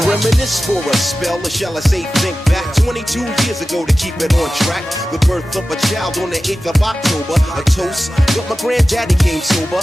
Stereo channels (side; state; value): both; normal; correlation 0.95